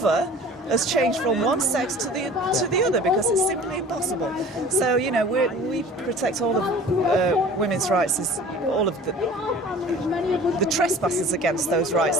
has changed from one sex to the other, because it's simply impossible. So we protect all of women's rights, as all of the trespassers against those rights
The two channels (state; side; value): normal; both; correlation 0.44